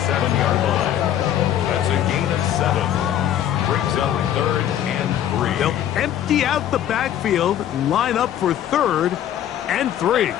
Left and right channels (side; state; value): right; quieter; 10.9 dB